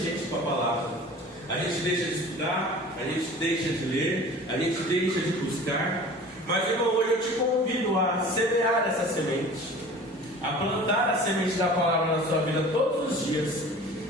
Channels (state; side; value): normal; both; correlation 0.42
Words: com a palavra. A gente deixa de estudar, a gente deixa de ler, a gente deixa de buscar. Mas irmão, hoje eu te convido a semear essa semente, a plantar a semente da palavra na sua vida todos os dias.